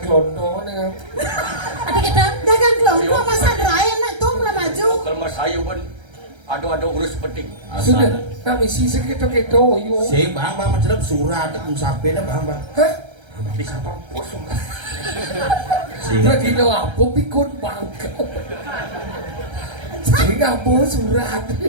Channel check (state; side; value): late; left; 1.3 ms